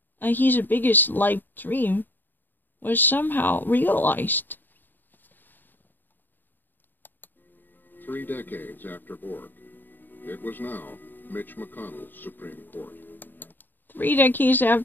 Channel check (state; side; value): late; right; 0.091 ms